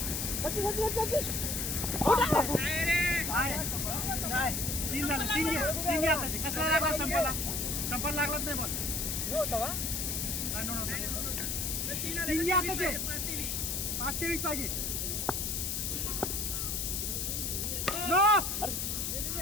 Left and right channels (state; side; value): noise; left; hiss, 1 dB below the sound